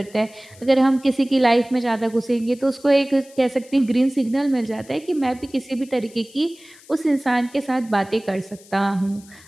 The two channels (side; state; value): left; noise; hiss, 24 dB below the sound